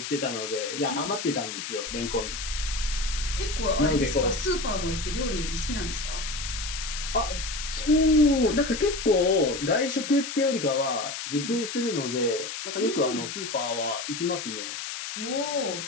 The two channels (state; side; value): noise; left; hiss, 6 dB below the sound